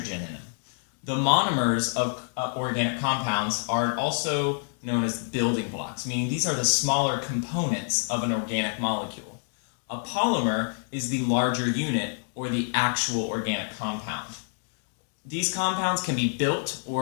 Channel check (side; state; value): right; silent; 60 dB below the other